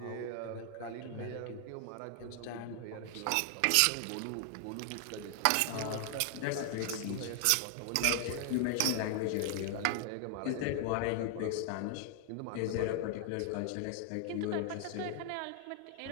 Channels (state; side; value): different; both; correlation 0.00